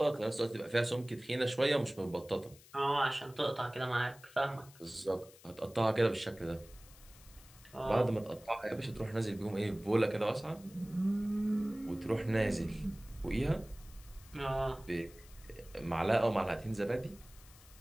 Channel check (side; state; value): left; noise; hiss, 22 dB below the sound